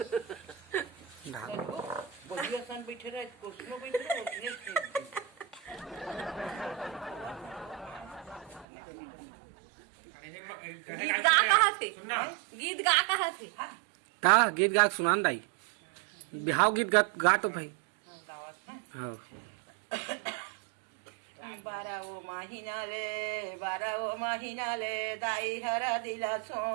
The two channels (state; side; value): drops out; left; at 8.7 s